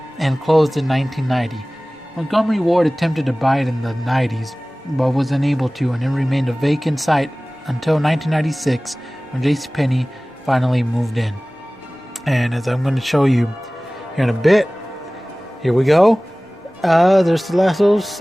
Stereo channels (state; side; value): normal; both; correlation 0.98